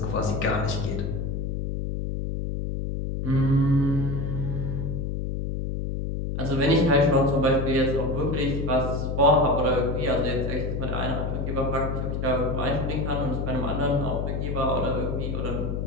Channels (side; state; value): left; noise; hum, 2 dB below the sound